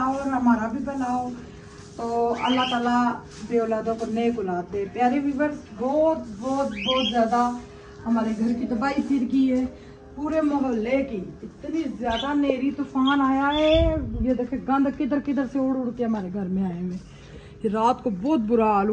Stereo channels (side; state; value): both; identical; correlation 1.00